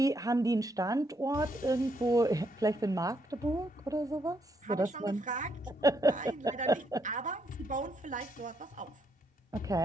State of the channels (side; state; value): both; normal; correlation 0.75